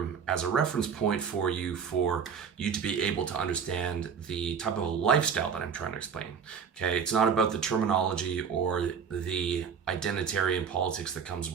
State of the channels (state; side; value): quieter; left; 6.8 dB